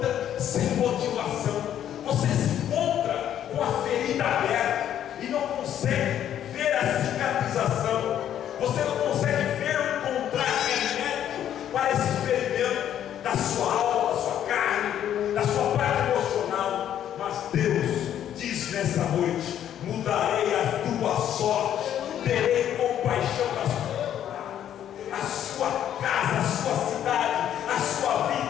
sem motivação, você se encontra com a ferida aberta e não consegue ver a cicatrização, você não consegue ver ou encontrar remédio para esse ferimento da sua alma, da sua carne, da sua parte emocional. Mas Deus diz nessa noite: mudarei a tua sorte, terei compaixão das a sua casa, a sua cidade, a sua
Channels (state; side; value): quieter; right; 10.5 dB